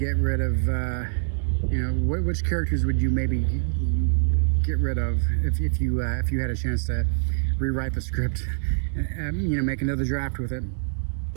rid of, you know, which characters would you maybe get rid of if you had a chance to rewrite the script, you know, make another draft with it.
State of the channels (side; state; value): left; silent; 62 dB below the other